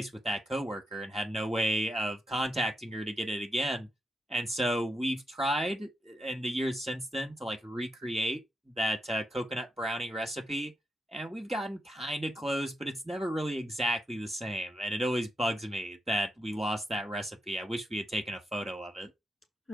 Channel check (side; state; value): both; normal; correlation 0.83